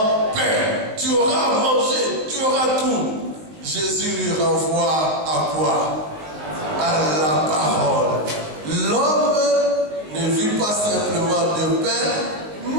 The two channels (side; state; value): left; late; 20 ms